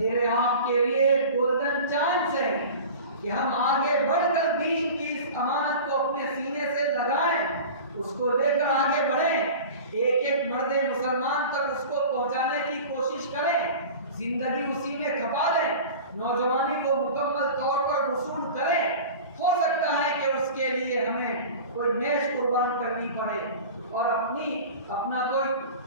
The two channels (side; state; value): both; inverted; correlation -0.36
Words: آپ کے لیے گولڈن چانس ہے کہ ہم آگے بڑھ کر دین کی اس امانت کو اپنے سینے سے لگائیں، اس کو لے کر آگے بڑھیں، ایک ایک مرد مسلمان تک اس کو پہنچانے کی کوشش کریں، زندگی اسی میں کھپا دیں، نوجوانی کو مکمل طور پر وصول کریں۔ ہو سکتا ہے کہ اس کے لیے ہمیں کوئی میز قربان کرنی پڑے اور اپنا کوئی